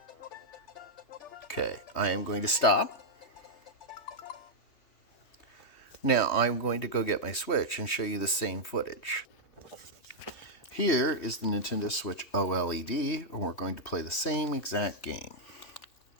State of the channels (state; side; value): late; right; 3.1 ms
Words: Okay, I am going to stop. Now I'm going to go get my Switch and show you the same footage. Here is the Nintendo Switch OLED, and we're going to play the same exact game.